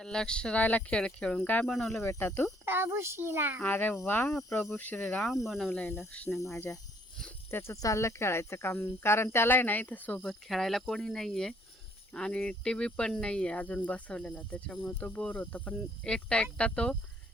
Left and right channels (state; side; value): normal; both; correlation 0.64